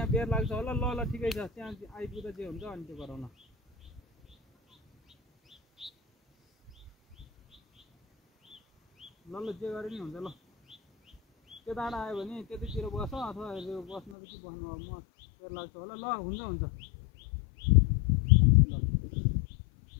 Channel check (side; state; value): right; drops out; at 14.2 s